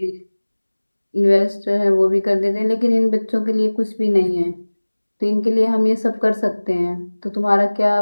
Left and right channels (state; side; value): inverted; both; correlation -1.00